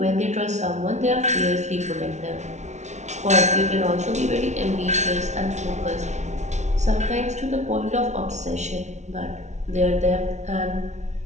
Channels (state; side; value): late; left; 0.33 ms